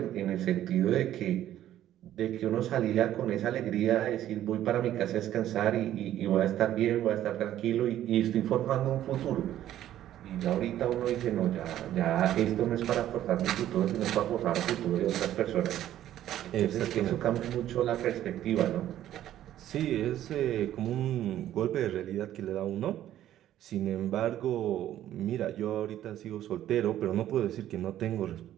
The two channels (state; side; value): quieter; left; 12.3 dB